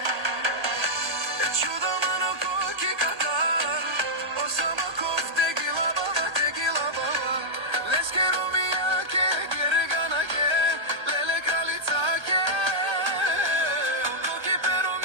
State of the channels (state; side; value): late; left; 1.3 ms